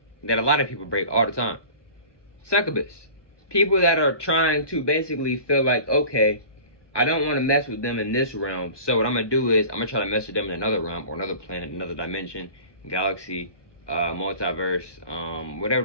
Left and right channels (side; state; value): right; late; 1.2 ms